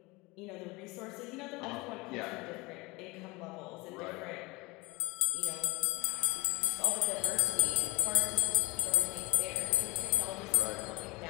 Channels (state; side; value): quieter; right; 23.6 dB